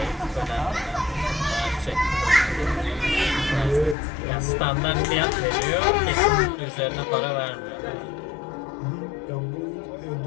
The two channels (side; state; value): right; drops out; at 4.0 s